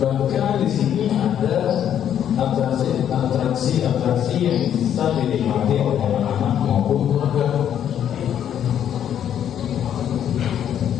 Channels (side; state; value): right; quieter; 9.8 dB